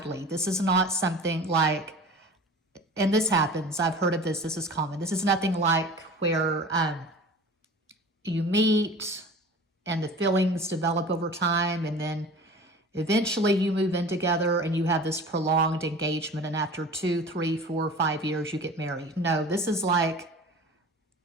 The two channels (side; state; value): both; normal; correlation 0.39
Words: This is not something like, and this happens, I've heard of this, this is common. This is nothing like where you meet and the feelings develop over time, and then eventually you move in together and you have this prolonged engagement, and after 2, 3, 4, 5 years you get married. No, this is like